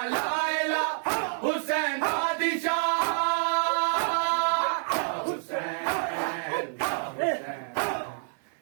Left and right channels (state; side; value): silent; left; 59 dB below the other